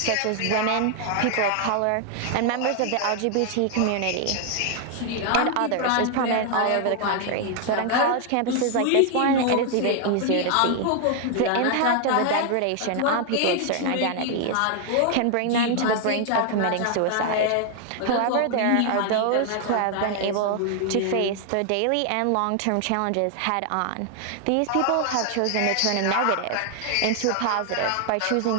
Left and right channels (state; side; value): different; both; correlation 0.00